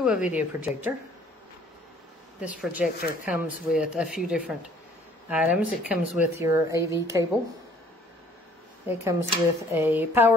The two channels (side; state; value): both; normal; correlation 0.58